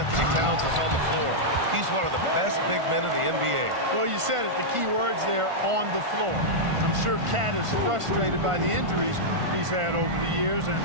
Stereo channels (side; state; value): left; late; 1.5 ms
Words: Towns is on the floor, he's one of the best big men in the NBA. Well, you said it, the key words there, on the floor. I'm sure Cat is frustrated by the injuries he's had over the years, and